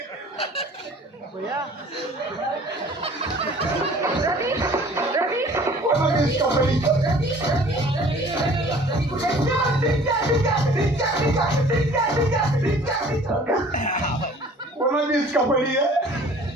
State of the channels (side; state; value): both; normal; correlation 0.50